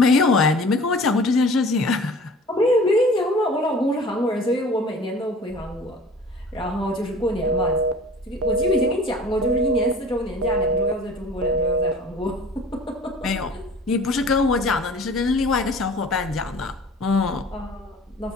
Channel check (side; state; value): both; normal; correlation 0.45